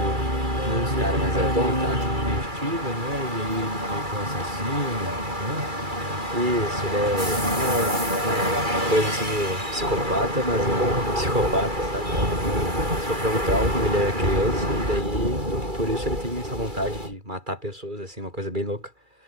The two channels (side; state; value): left; late; 2.3 ms